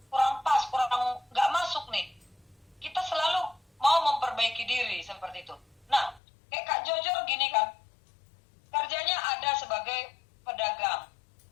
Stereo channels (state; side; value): drops out; right; at 6.2 s